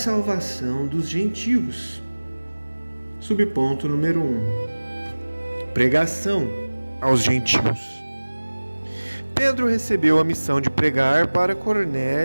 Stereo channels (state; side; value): inverted; both; correlation -1.00